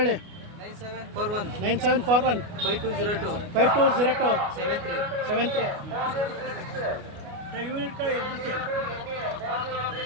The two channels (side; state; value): left; late; 29 ms